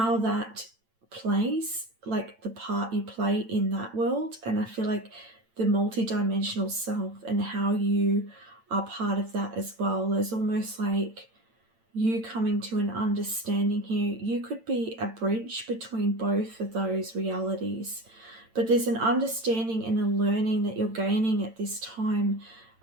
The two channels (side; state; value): left; late; 8.9 ms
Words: that plays, like the part you play in that world. And I feel like the multi-dimensional self and how you are part of that as well. There's almost like you coming to an understanding here. You could be a bridge between both of those realities, but there's an understanding and a learning that you're gaining at this time